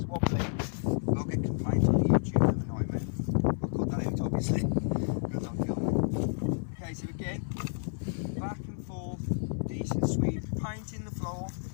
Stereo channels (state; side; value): silent; right; 57 dB below the other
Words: wobbly, we'll get complaints on the YouTube of the nightmare. I'll cut that out, obviously, because I'm filming. Okay, so again, back and forth, decent sweep, painting the floor.